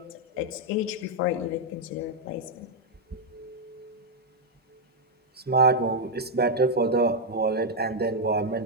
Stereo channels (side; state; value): both; normal; correlation -0.01